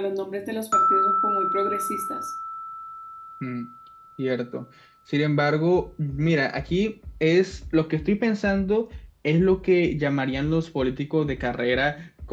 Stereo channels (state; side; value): identical; both; correlation 1.00